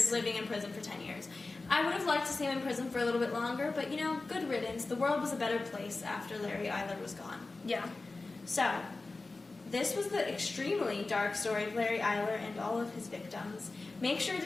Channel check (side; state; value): right; quieter; 3.5 dB